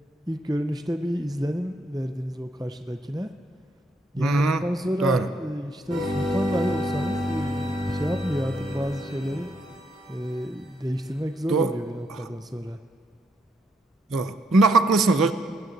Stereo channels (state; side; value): normal; both; correlation 0.75